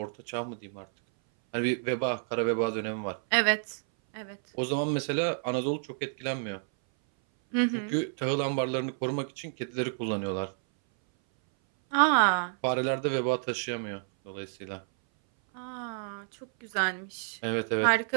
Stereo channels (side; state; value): left; silent; 57 dB below the other